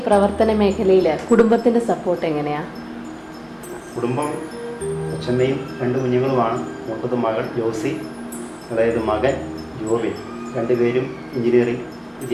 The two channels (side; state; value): both; identical; correlation 1.00